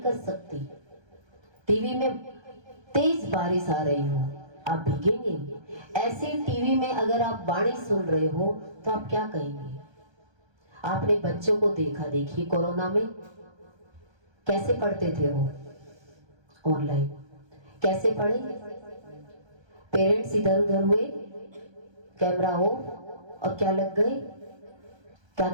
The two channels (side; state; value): left; late; 1.3 ms